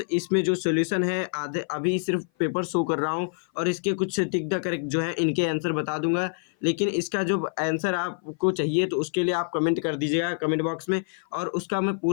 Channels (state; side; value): silent; right; 57 dB below the other